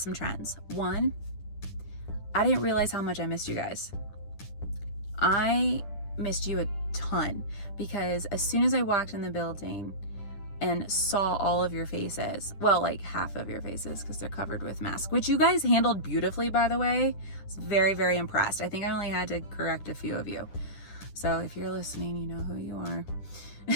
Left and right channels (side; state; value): right; late; 10 ms